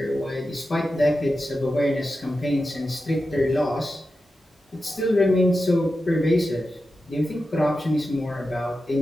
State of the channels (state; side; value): normal; both; correlation 0.91